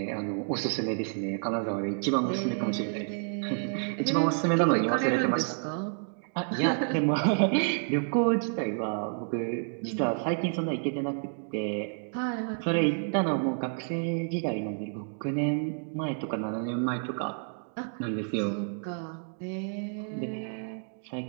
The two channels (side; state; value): left; silent; 58 dB below the other